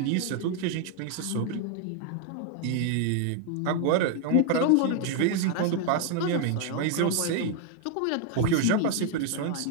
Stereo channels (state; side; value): different; both; correlation 0.00